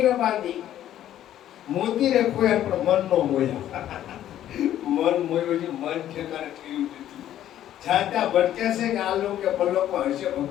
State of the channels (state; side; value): quieter; right; 11.8 dB